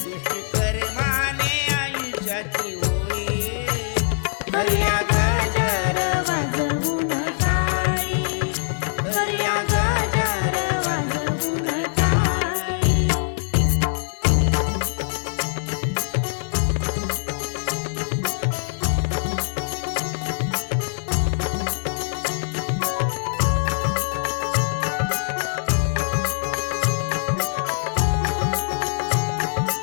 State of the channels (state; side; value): silent; right; digital silence